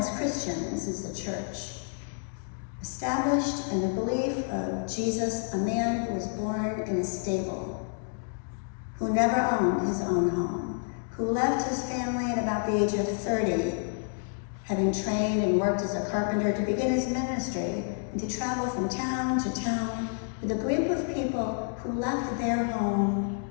Christians is the church, established in the belief of Jesus, a man who was born in a stable, who never owned his own home, who left his family at about the age of 30, having trained and worked as a carpenter to begin his ministry and to travel from town to town with a group of people who left their home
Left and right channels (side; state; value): right; silent; 58 dB below the other